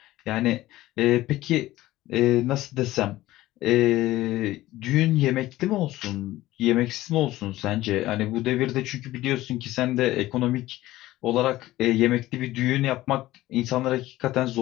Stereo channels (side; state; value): right; quieter; 16.4 dB